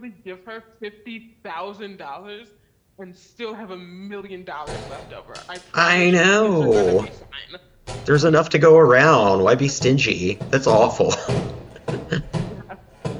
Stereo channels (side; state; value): both; identical; correlation 1.00